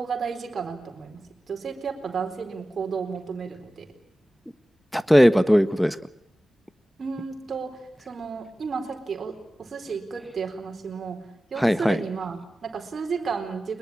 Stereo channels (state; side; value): normal; both; correlation 0.96